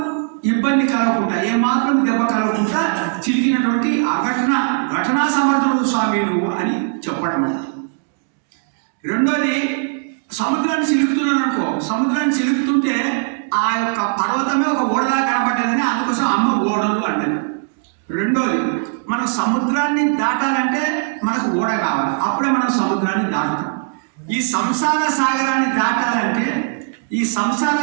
ఇబ్బంది కలగకుండా, ఏమాత్రం దెబ్బ కలగకుండా చిలికినటువంటి ఘటనా సమర్థుడు స్వామి నువ్వు అని చెప్పడం. రెండోది సముద్రాన్ని చిలుకుతున్నాను అనుకో, సముద్రాన్ని చిలుకుతుంటే ఆ యొక్క పర్వతమే ఒక ఓడలా కనబడ్డదని అందుకోసం అమ్మ ఓడలు అంటది. రెండోది మనం సముద్రాన్ని దాటాలంటే మనకు ఓడ కావాలి, అప్పుడే మనం సముద్రాన్ని దాటుతాం. ఈ సంసార సాగరాన్ని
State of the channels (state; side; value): silent; left; 67 dB below the other